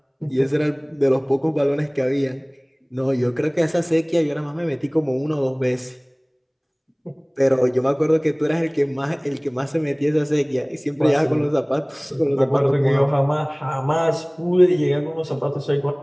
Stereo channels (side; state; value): both; identical; correlation 1.00